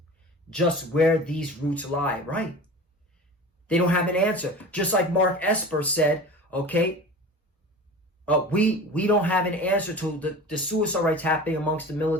just where these roots lie, right? They don't have an answer. Just like Mark Esper said, okay, we don't have an answer to the suicide rates happening amongst the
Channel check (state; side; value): normal; both; correlation 0.36